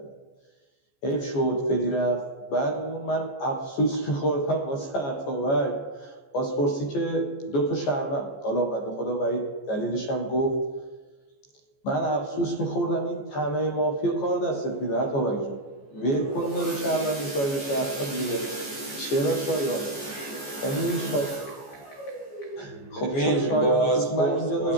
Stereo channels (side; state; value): right; late; 14 ms